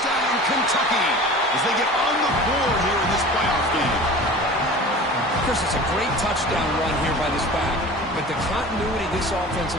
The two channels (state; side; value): normal; both; correlation 0.39